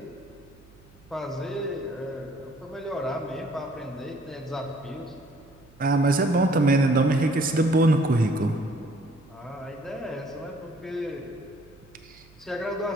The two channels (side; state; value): right; noise; hum, 26 dB below the sound